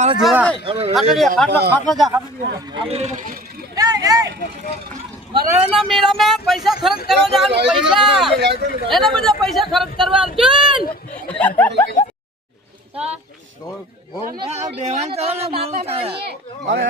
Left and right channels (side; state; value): both; normal; correlation 0.43